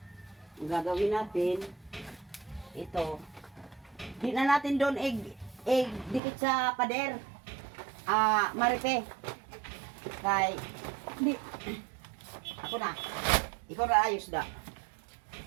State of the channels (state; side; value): drops out; left; at 6.2 s